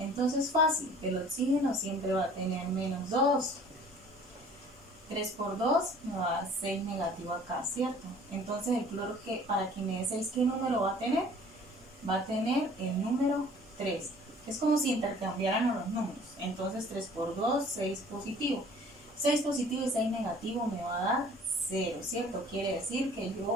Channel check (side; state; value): both; normal; correlation 0.51